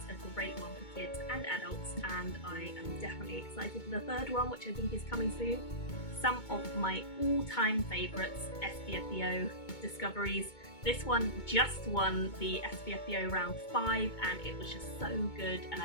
a great one for kids and adults, and I am definitely excited for the third one, which I think is coming soon. Some of my all-time favourites, SPFBO discoveries. This one just won the SPFBO round 5, and it was just so good, and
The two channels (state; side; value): late; right; 2.2 ms